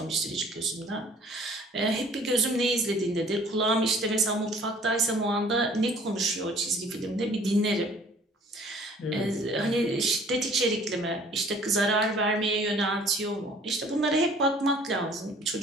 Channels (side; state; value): both; normal; correlation 0.54